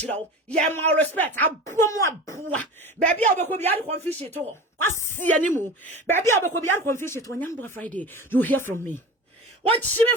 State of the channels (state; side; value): normal; both; correlation 0.33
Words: you. Yeah, more respect. I bomb. Baby, I will be out of confusion at all. Quasia anymore. Baby, I will be out of confusion when Young Friday. You hear from me. What